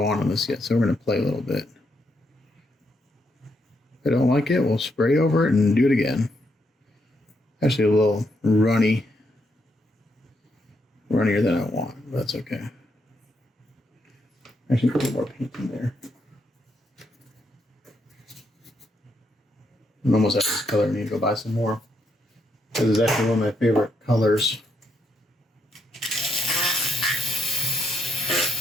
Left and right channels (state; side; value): normal; both; correlation 0.78